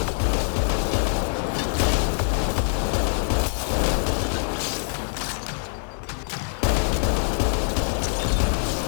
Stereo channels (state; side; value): silent; right; 63 dB below the other